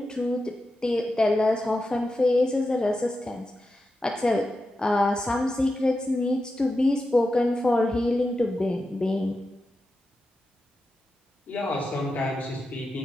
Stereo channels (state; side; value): normal; both; correlation 0.90